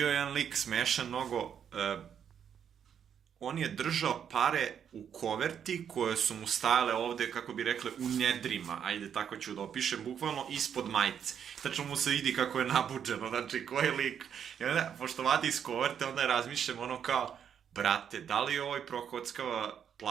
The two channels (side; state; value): left; quieter; 8.3 dB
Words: jedan lik smešan mnogo. On je držao pare u koverti koje su mu stajale ovde, kako bi rekli, u nedrima. Ajde, tako ću da opišem, bukvalno ispod majice. Tačno mu se vidi kako je nabuđeno, znači ko je lik. I onda, pošto vadi iz koverte, onda razmišljam ono kao, brate, da li ovaj prokockava